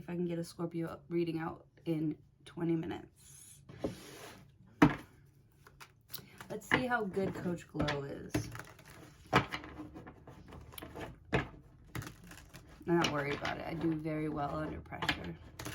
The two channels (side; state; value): both; identical; correlation 1.00